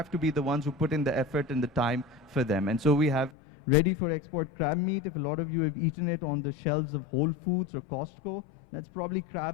to be the ones who put in the effort and the time for them. And so we have ready for export crab meat. If a lot of you have eaten it on the shelves of Whole Foods or Costco, that's probably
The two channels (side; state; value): right; drops out; at 3.3 s